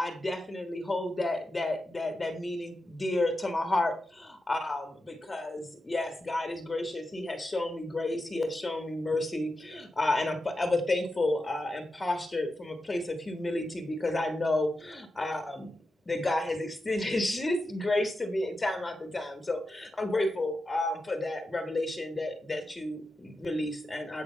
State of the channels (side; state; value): both; normal; correlation 0.89